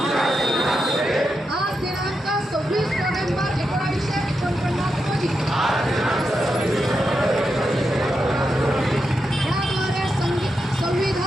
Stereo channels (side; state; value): both; normal; correlation 0.86